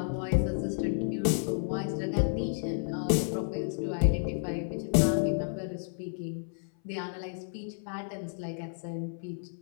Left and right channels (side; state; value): right; silent; 57 dB below the other